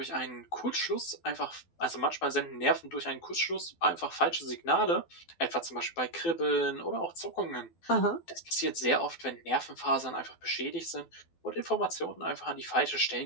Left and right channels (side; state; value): right; late; 12 ms